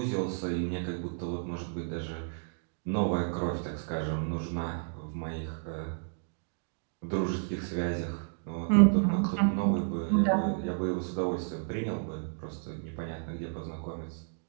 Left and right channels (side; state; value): left; silent; digital silence